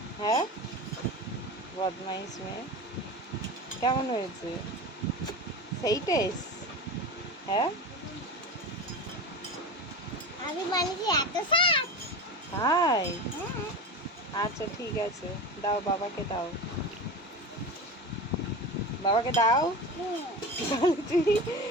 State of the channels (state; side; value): normal; both; correlation 0.28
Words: হ্যাঁ, বদমাইশ মেয়ে। কেমন হয়েছে? সেই টেস্ট? হ্যাঁ, আমি বানিয়েছি এত শাক। হাই। হ্যাঁ। আচ্ছা ঠিক আছে, দাও বাবাকে দাও। বাবাকে দাও। হুম। তাহলে তুই